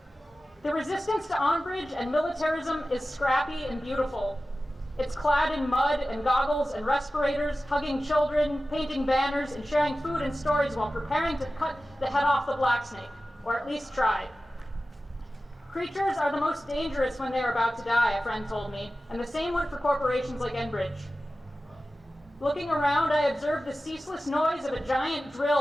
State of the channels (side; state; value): both; normal; correlation 0.95